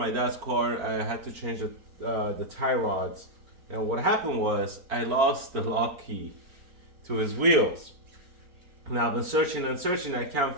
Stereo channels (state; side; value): late; left; 4.4 ms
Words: dad's car. I had to change the tie rods, and what happened was I lost the lock key to his wheels. Now I've been searching and searching. I can't